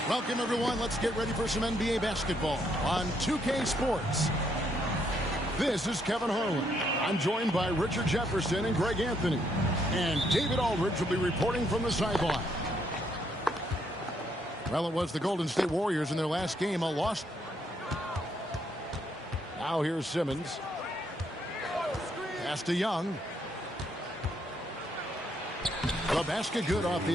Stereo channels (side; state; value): both; normal; correlation 0.73